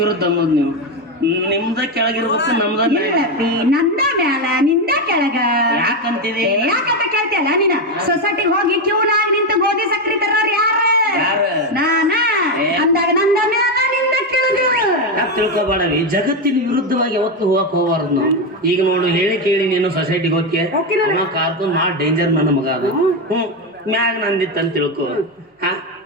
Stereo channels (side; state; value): both; normal; correlation 0.10